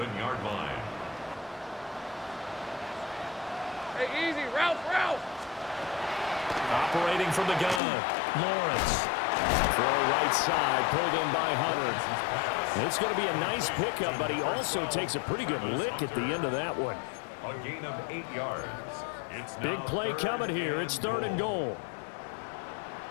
line. Hey, easy. Ralph. Operating from the gun. Lawrence. Throw right side, pulled in by Hunter. It's going to be a nice pickup, but he also takes a pretty good lick at the end of that one. A gain of 8 yards. It's Big play coming here. It's 3rd and goal.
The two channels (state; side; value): drops out; right; at 7.8 s